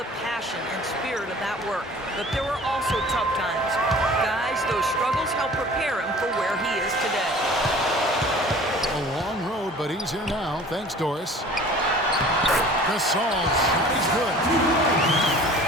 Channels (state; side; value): normal; both; correlation 0.46